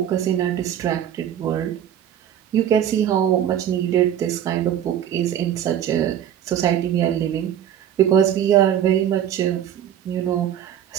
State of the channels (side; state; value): left; quieter; 10.2 dB